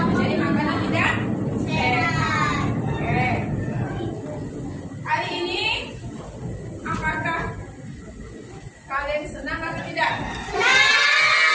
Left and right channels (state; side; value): identical; both; correlation 1.00